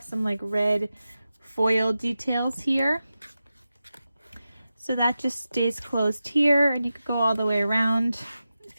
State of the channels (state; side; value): inverted; both; correlation -0.92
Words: some like red foil details here. So that just stays closed here, and you could go all the way around